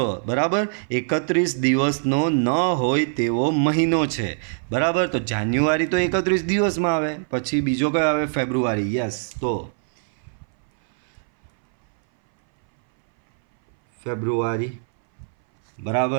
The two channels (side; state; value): left; silent; 61 dB below the other